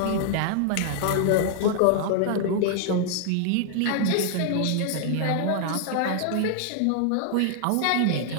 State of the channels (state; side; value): different; both; correlation -0.01